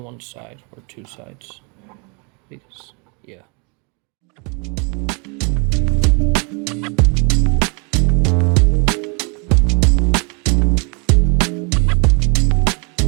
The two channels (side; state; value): left; quieter; 33.2 dB